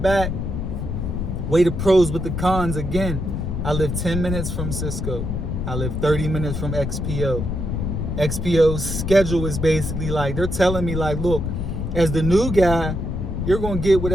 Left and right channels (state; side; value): noise; left; rumble, 3 dB below the sound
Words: back, weigh the pros with the cons again. I live 10 minutes from Sysco. I live 30 minutes from XPO. XPO's schedule is basically like, they're telling me like, look, as the new guy, you're going to get